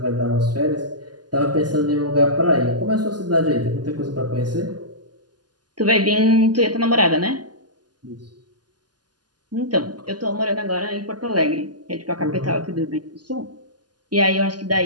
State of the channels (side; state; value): left; late; 0.70 ms